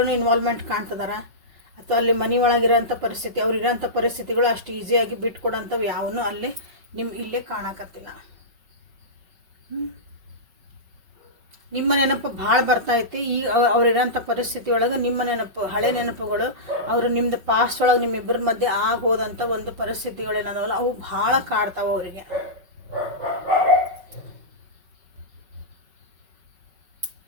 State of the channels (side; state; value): left; late; 5.3 ms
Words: ಇನ್ವಾಲ್ವ್ಮೆಂಟ್ ಕಾಣ್ತಿದಾರ, ಅಥವಾ ಅಲ್ಲಿ ಮನೆ ಒಳಗಿರೋಂಥ ಪರಿಸ್ಥಿತಿ, ಅವ್ರು ಇರೋಂಥ ಪರಿಸ್ಥಿತಿಗಳು ಅಷ್ಟು ಈಸಿಯಾಗಿ ಬಿಟ್ಕೊಡೋಂಥವು ಯಾವನು ಅಲ್ಲಿ ಇಲ್ಲೇ ಕಾಣಕತ್ತಿಲ್ಲ. ನಿಮ್ಮ ನೆನಪು ಭಾಳ ಬರ್ತೈತಿ. ಈಗ ಅವ್ರಿರೋಂಥ ಪರಿಸ್ಥಿತಿ ಒಳಗೆ ನಿಮ್ಮ ನೆನಪು, ಹಳೆ ನೆನಪುಗಳು, ಅವರು ನಿಮ್ಮದು ಪಾಸ್ಟ್ ಒಳಗೆ ನಿಮ್ಮಿಬ್ಬರ ಮಧ್ಯೆ ಆಗೋದಂಥ ಒಂದು ಪರಿಸ್ಥಿತಿಗಳೇನದಾವಲ್ಲ ಅವು ಭಾಳ ಕಾಡ್ತಾವೆ ಅವರಿಗೆ.